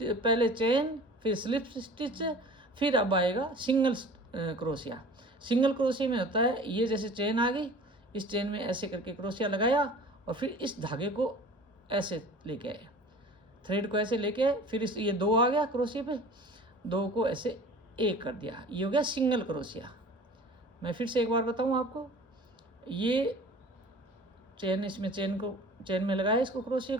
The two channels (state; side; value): normal; both; correlation 0.43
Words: पहले चेन, फिर स्लिप स्टिच, फिर अब आएगा सिंगल क्रोशिया। सिंगल क्रोशिया में होता है ये जैसे चेन आ गई, इस चेन में ऐसे करके क्रोशिया लगाया, और फिर इस धागे को ऐसे लेके आए, थ्रेड को ऐसे लेके आए, फिर ये 2 आ गया क्रोशिया पे, 2 को ऐसे 1 कर दिया, ये हो गया सिंगल क्रोशिया। मैं फिर से एक बार बताऊँ आपको, ये चेन, इसमें चेन में लगाया इसको क्रोशिया